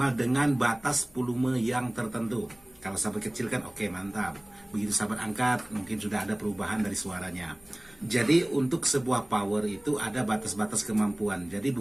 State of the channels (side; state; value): left; noise; hum, 28 dB below the sound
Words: dengan batas volume yang tertentu. Kalau sahabat kecil kan oke, mantap. Begitu sahabat angkat, mungkin sudah ada perubahan dari suaranya. Jadi untuk sebuah power itu ada batas-batas kemampuan. Jadi